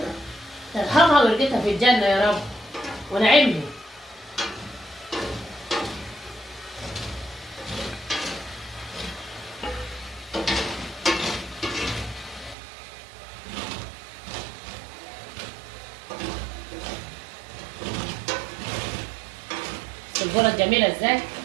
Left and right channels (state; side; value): drops out; left; at 12.6 s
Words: يرحمها ويرجتها في الجنه يا رب ونعمني. الجرة جميلة ازاي؟